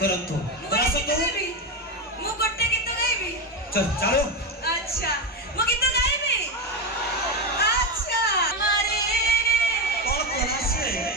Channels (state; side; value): normal; both; correlation 0.14